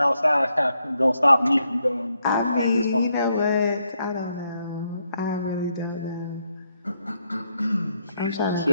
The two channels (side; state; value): both; inverted; correlation -0.78